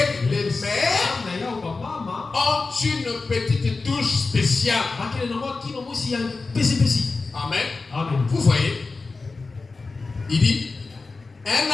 les mères ont une petite touche spéciale. Amen. Vous voyez, il dit, un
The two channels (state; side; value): quieter; right; 3.9 dB